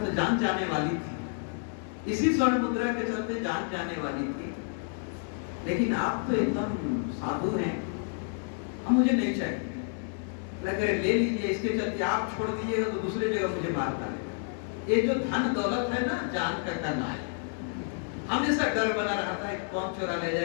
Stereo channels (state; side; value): silent; right; 58 dB below the other